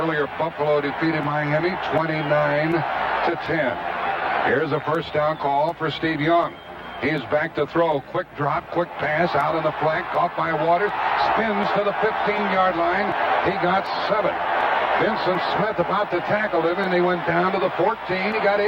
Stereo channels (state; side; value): identical; both; correlation 1.00